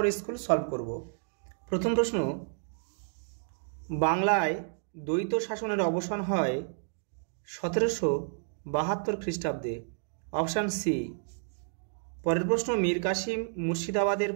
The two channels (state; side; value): silent; left; digital silence